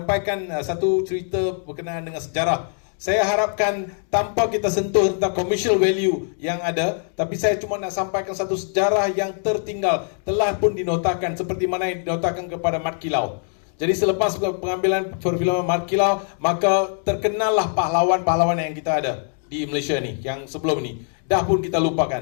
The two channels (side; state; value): right; silent; 56 dB below the other